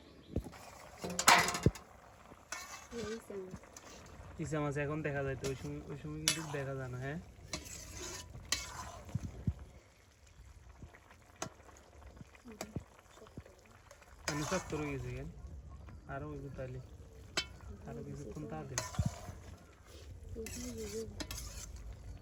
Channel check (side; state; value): both; identical; correlation 1.00